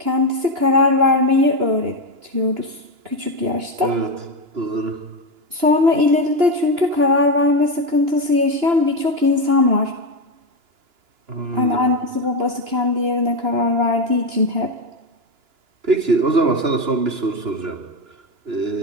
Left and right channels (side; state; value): left; late; 2.9 ms